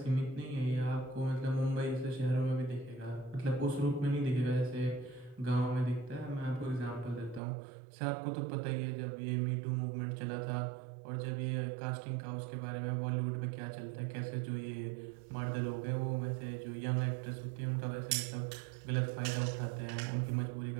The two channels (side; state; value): left; drops out; at 7.4 s